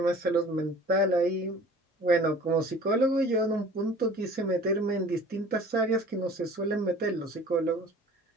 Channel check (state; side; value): normal; both; correlation 0.46